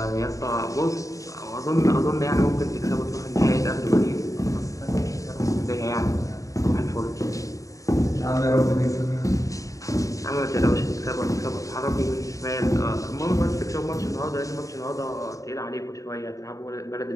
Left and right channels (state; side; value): late; right; 0.16 ms